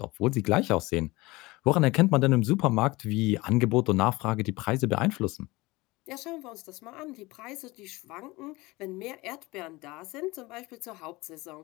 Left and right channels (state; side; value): quieter; right; 21.8 dB